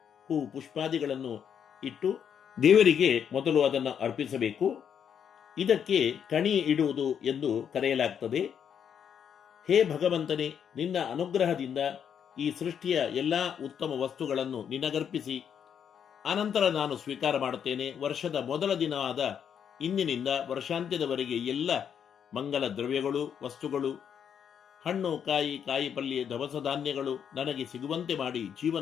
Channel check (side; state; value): right; quieter; 8.1 dB